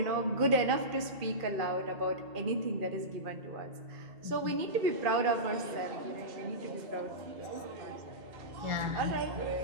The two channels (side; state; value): left; late; 2.4 ms